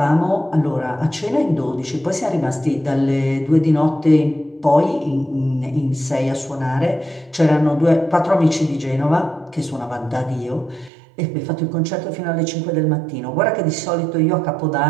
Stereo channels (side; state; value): left; drops out; at 10.9 s